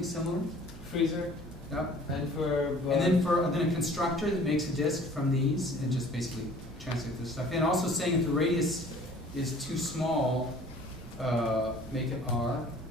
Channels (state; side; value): normal; both; correlation 0.50